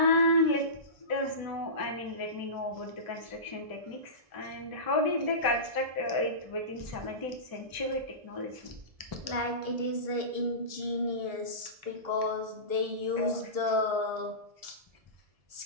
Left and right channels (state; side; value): late; left; 1.7 ms